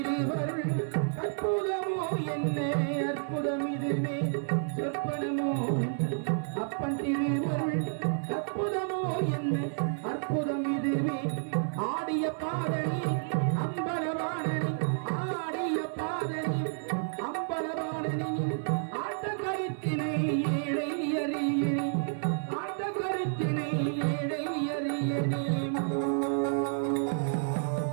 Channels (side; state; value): left; silent; 57 dB below the other